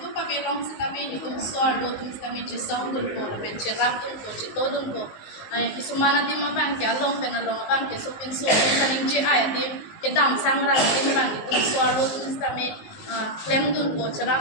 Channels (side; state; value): right; late; 19 ms